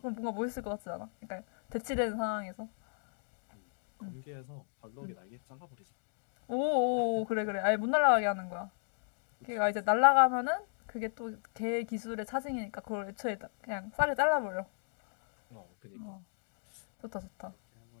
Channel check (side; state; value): right; silent; digital silence